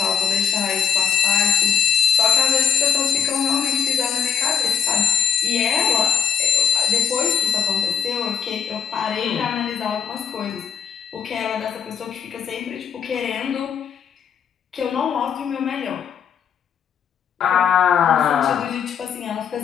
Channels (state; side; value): quieter; right; 7.7 dB